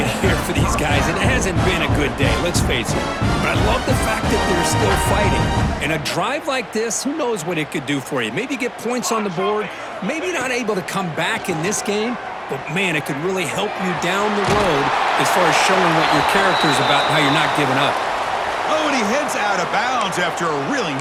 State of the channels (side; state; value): both; identical; correlation 1.00